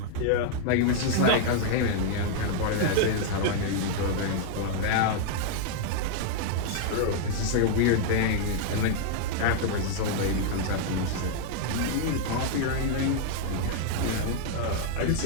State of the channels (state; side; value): different; both; correlation -0.01